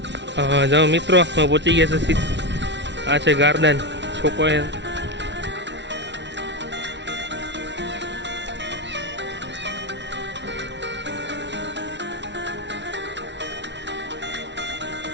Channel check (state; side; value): late; left; 0.51 ms